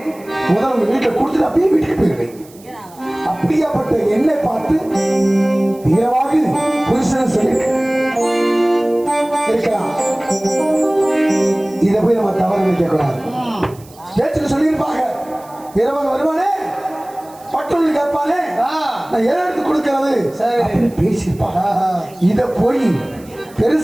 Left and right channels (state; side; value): noise; right; hiss, 25 dB below the sound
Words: முதல்ல உங்க வீட்டுல கொடுத்துட்டு அப்படியே வீட்டுக்கு போயிருவேன். அப்படியாப்பட்ட என்னை பார்த்து வீரவாகு புருஷன் சொல்லி இருக்கலாம். இதை போய் நம்ம தவறு நினைக்க கூடாது. பேச்சுக்கு சொல்லியிருப்பாங்க, வீரவாகு வருவானே பட்டுன்னு கேட்பானே, நான் எடுத்து கொடுக்கிறது அப்படின்னு பேசியிருப்பாங்க. இத போய்